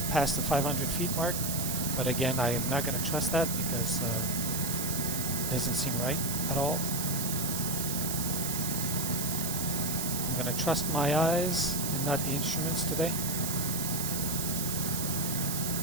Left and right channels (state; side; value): noise; right; hiss, 2 dB below the sound